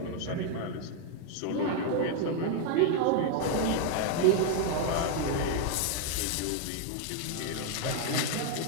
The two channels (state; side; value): different; both; correlation 0.00